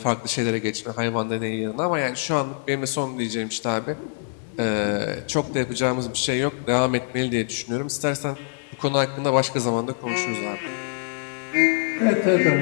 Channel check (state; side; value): silent; right; digital silence